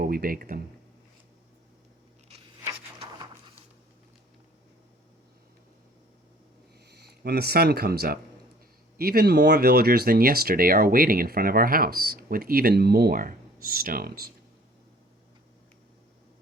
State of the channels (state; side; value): normal; both; correlation 0.53